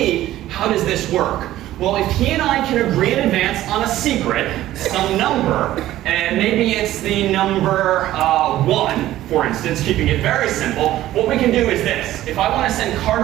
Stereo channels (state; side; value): quieter; left; 14.3 dB